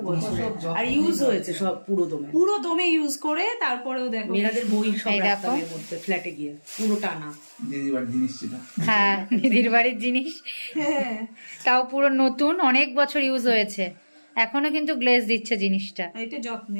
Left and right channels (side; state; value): both; inverted; correlation -1.00